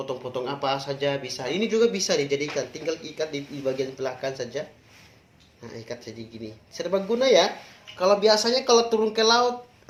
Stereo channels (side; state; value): both; identical; correlation 1.00